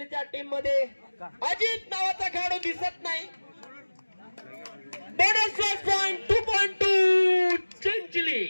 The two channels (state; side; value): inverted; both; correlation -1.00